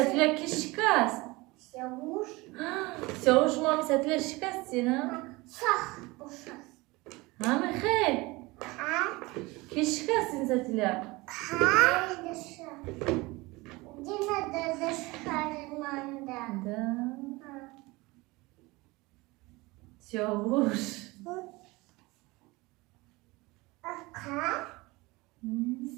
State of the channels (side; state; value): left; quieter; 22.7 dB